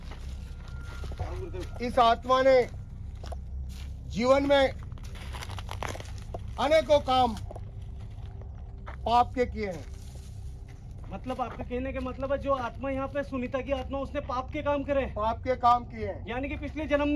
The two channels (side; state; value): both; identical; correlation 1.00